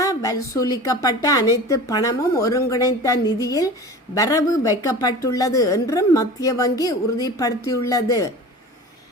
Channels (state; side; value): normal; both; correlation 0.36